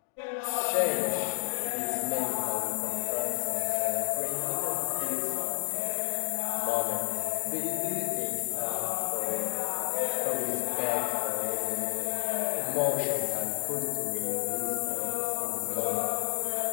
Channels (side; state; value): right; silent; digital silence